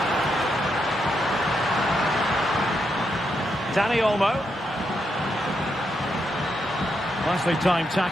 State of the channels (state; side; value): normal; both; correlation 0.82